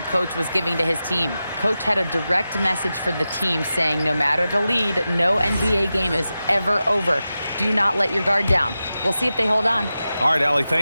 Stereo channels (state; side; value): inverted; both; correlation -0.93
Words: coach was giving to his team. Coach had a direct message for the team saying no matter the lead, no NBA game is ever over. Do not let your guard down. We'll see if they hold on. All right, Allie,